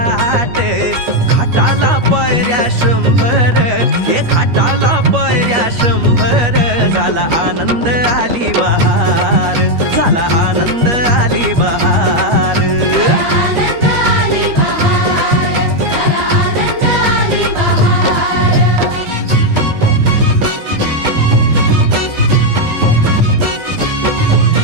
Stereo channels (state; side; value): late; left; 13 ms